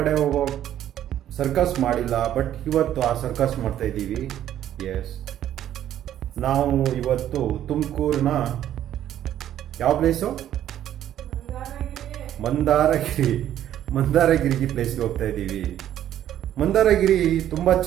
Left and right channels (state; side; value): quieter; left; 11.5 dB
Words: ಹೋಗೋ ಸರ್ಕಸ್ ಮಾಡಿಲ್ಲ. ಬಟ್ ಇವತ್ತು ಆ ಸರ್ಕಸ್ ಮಾಡ್ತಾ ಇದ್ದೀವಿ. ಎಸ್, ನಾವು ಇವತ್ತು ತುಮಕೂರಿನ ಯಾವ ಪ್ಲೇಸು? ಮಂದಾರಗಿರಿ ಪ್ಲೇಸ್ಗೆ ಹೋಗ್ತಾ ಇದ್ದೀವಿ. ಮಂದಾರಗಿರಿ ತುಂಬ